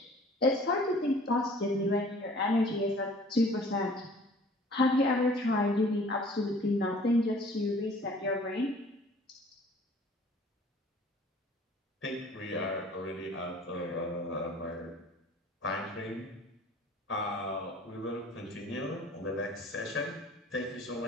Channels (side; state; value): both; normal; correlation 0.51